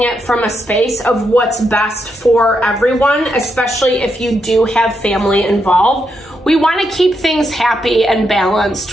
it from a space of what's best for everyone, especially if you do have family involved. We want to keep things happy and balanced,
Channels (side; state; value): both; normal; correlation 0.81